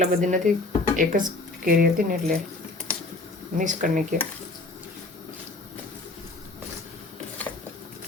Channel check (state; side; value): quieter; right; 3.1 dB